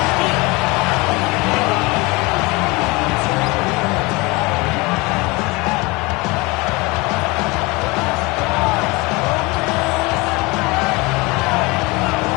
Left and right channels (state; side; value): quieter; right; 24.7 dB